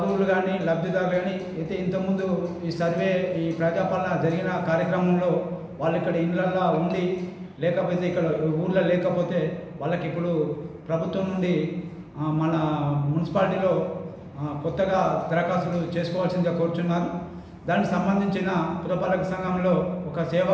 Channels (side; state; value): both; identical; correlation 1.00